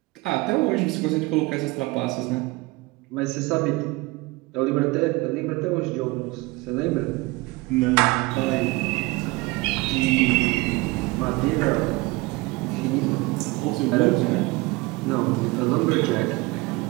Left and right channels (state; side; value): quieter; left; 23.0 dB